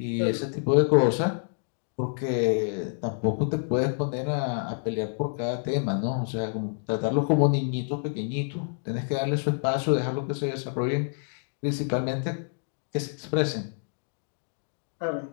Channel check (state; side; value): silent; right; digital silence